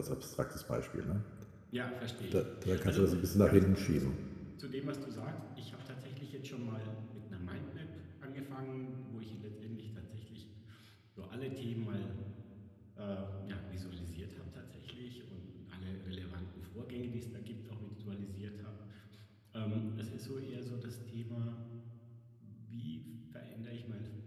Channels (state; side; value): identical; both; correlation 1.00